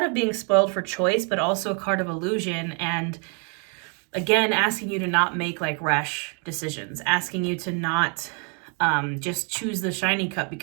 of being spoiled for choice, but also a card of illusion. And again, asking you to not make like rash decisions, asking you to not just choose the shiny cup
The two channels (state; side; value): quieter; left; 38.1 dB